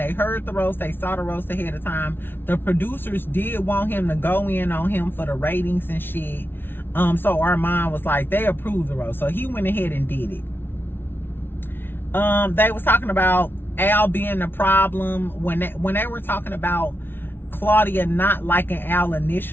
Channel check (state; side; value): late; right; 0.10 ms